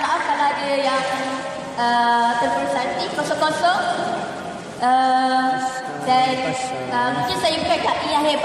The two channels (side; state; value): both; identical; correlation 1.00